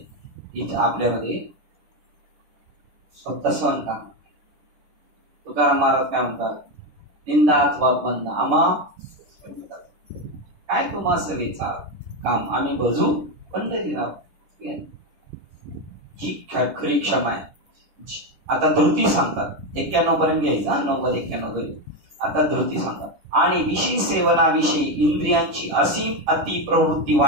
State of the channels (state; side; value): late; left; 10 ms